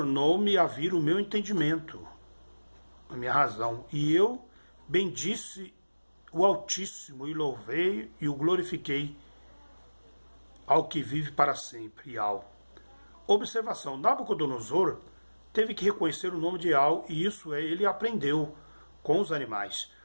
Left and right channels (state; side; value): inverted; both; correlation -1.00